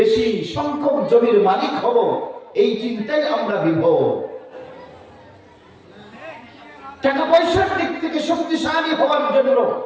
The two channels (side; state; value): both; identical; correlation 1.00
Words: সংখ্যক জমির মালিক হব। এই চিন্তায় আমরা বিভোর। টাকা পয়সার দিক থেকে শক্তিশালী হওয়ার জন্য